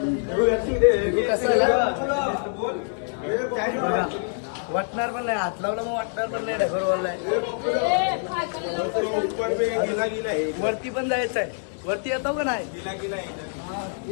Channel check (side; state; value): right; silent; 62 dB below the other